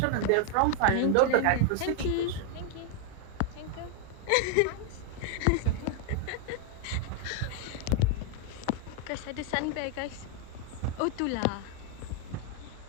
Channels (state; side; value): different; both; correlation 0.00